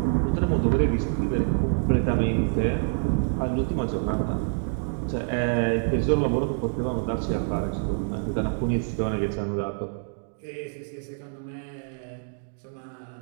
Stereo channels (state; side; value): silent; left; digital silence